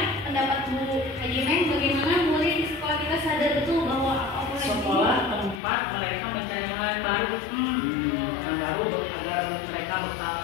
pendapat Bu Haji Neng, bagaimana murid di sekolah kita sadar betul bahwa apa Sekolah tempat mereka mencari hal yang baru, yang baru agar mereka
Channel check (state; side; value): drops out; right; at 5.6 s